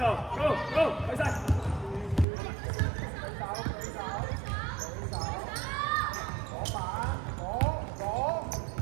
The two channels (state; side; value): drops out; left; at 2.2 s